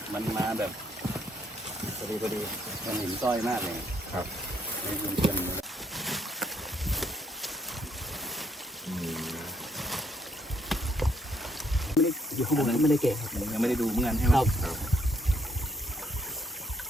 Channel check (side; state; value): both; normal; correlation 0.72